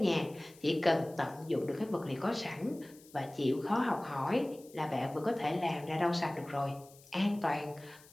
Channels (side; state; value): left; noise; hiss, 24 dB below the sound